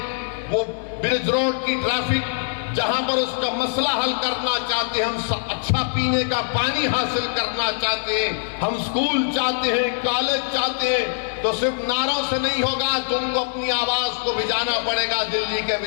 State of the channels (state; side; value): silent; right; digital silence